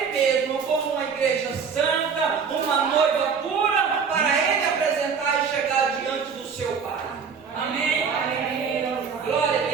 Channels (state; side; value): quieter; left; 6.1 dB